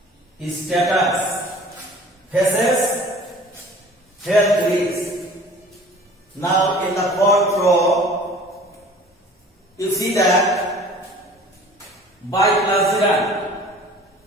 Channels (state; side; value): normal; both; correlation 0.47